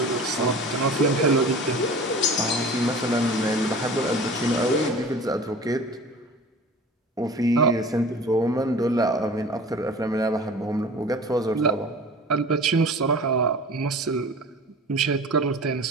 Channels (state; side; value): normal; both; correlation 0.40